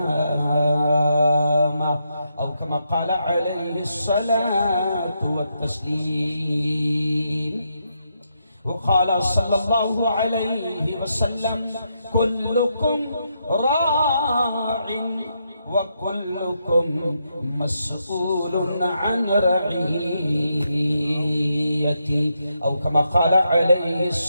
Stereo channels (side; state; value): both; inverted; correlation -0.81